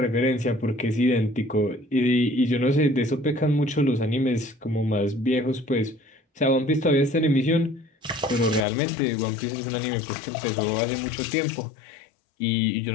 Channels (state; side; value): drops out; right; at 8.7 s